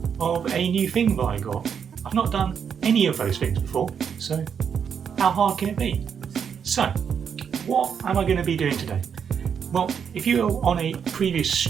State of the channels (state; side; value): quieter; left; 7.3 dB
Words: of a new thing that I got. I've not done any of those things before, so how hard can it be? So, what am I going to be doing today? Well, if you were on a previous